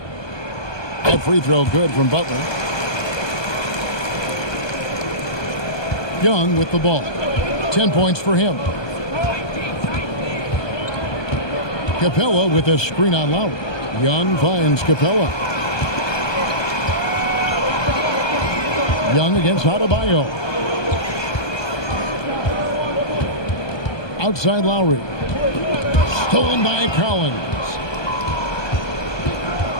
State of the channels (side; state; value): right; late; 1.2 ms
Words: That free throw good from Butler. Young with the ball. 10 points for him. Capella with a screen on Lowry. Young finds Capella. Young against Adebayo. Outside Lowry. Stolen by Collins.